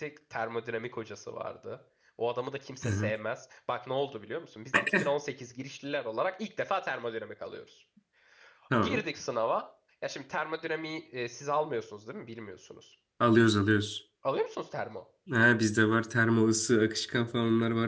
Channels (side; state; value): both; identical; correlation 1.00